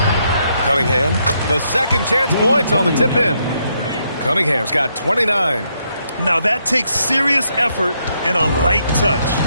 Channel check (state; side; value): inverted; both; correlation -0.76